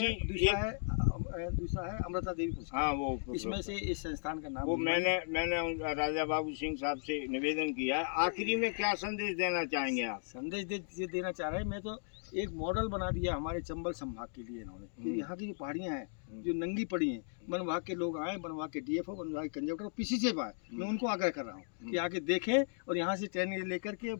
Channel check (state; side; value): silent; right; digital silence